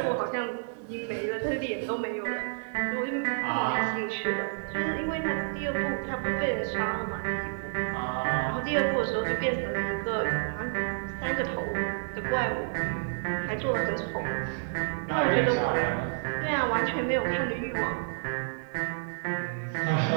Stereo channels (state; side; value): silent; left; digital silence